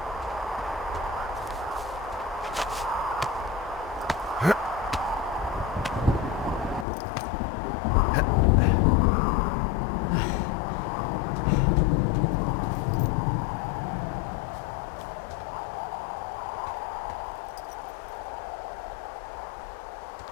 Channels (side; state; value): right; drops out; at 6.9 s